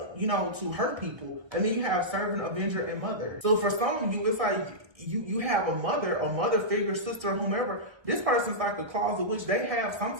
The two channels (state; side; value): late; left; 1.3 ms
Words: to hurt people. And then you have servant, avenger, and mother. So for some of you, it's like you have a mother figure, sister, whomever. This person's like a closet witch. They have some